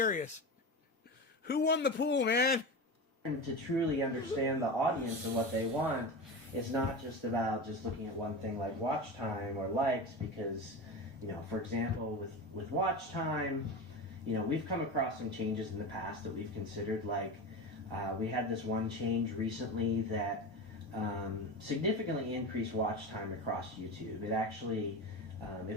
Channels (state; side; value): normal; both; correlation 0.24